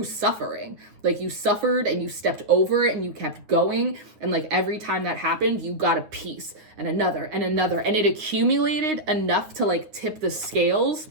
suffering, like you suffered and you stepped over it and you kept going. And like every time that happened, you got a piece and another and another. And it accumulated enough to like tip the scales.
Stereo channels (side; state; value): left; late; 9.7 ms